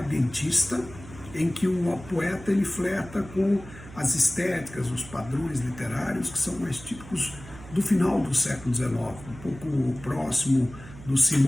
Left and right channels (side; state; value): right; noise; hum, 16 dB below the sound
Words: em que o poeta ele flerta com as estéticas, os padrões literários que são mais típicos do final do século XIX, um pouco próximo do